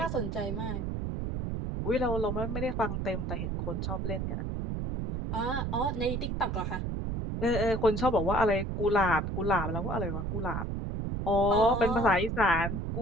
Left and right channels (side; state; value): right; noise; rumble, 2 dB below the sound